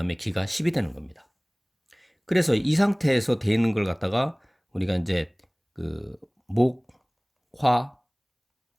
기가 10이 되는 겁니다. 그래서 이 상태에서 돼 있는 걸 갖다가 우리가 이제 그 목, 화,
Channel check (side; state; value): both; identical; correlation 1.00